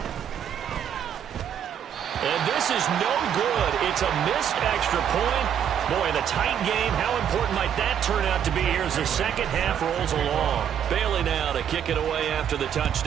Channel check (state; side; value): quieter; left; 9.0 dB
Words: And this is no good. It's a missed extra point. Boy, in a tight game, how important might that turn out to be here as the second half rolls along? Bailey now to kick it away after the